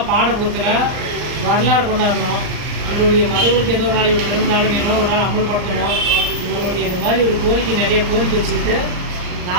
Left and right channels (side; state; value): left; late; 39 ms